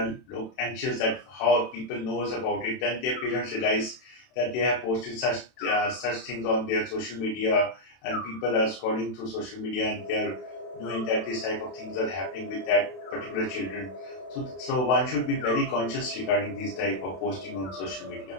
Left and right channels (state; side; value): late; right; 32 ms